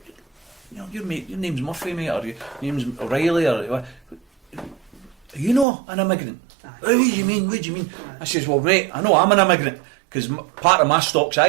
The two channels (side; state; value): left; drops out; at 5.7 s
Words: know, your name's Murphy, mate, or your name's O'Reilly, or you know an immigrant. What do you mean? I says, well, mate, I know I'm an immigrant because part of my stock's